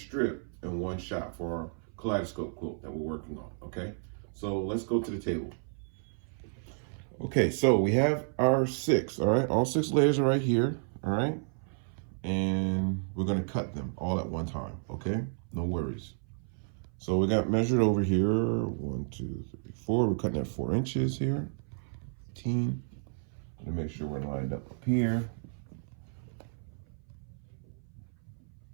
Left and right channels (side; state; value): left; silent; 57 dB below the other